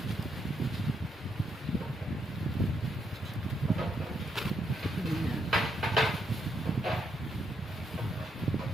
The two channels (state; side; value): normal; both; correlation 0.78